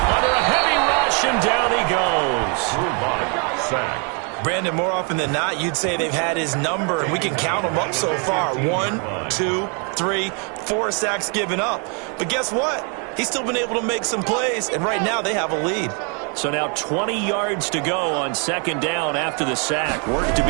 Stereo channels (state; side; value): quieter; left; 36.9 dB